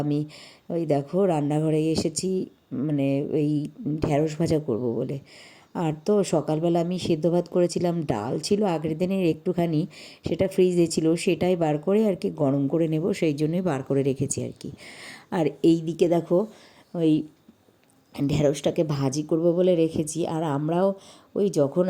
আমি ওই দেখো রান্নাঘরে এসেছি, মানে ওই ঢ্যাঁড়স ভাজা করব বলে। আর তো সকালবেলা আমি সেদ্ধ ভাত করেছিলাম, ডাল ছিল আগের দিনের একটুখানি, সেটা ফ্রিজে ছিল, সেটাই বার করে আর কি গরম করে নেব, সেই জন্যই বার করে রেখেছি আর কি। আর এই দিকে দেখো, ওই ঢ্যাঁড়সটাকে ভাজি করব বলে রেখেছি। আর আমরাও ওই যখন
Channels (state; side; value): identical; both; correlation 1.00